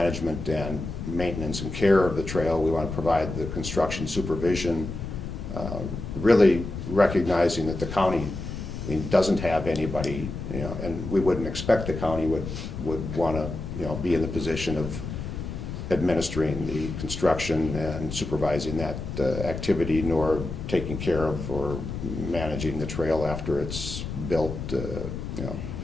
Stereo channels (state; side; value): noise; left; rumble, 6 dB below the sound